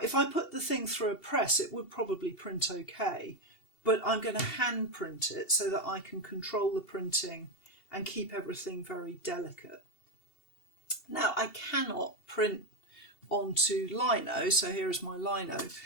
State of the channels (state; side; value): late; right; 2.7 ms